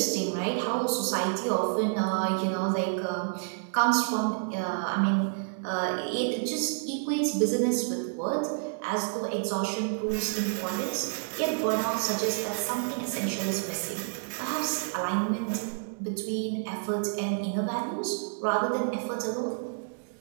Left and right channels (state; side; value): silent; left; digital silence